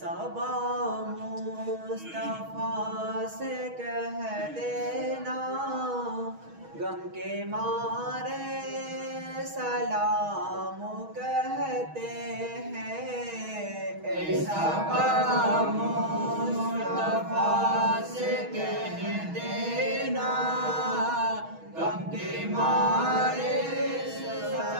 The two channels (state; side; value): late; left; 6.3 ms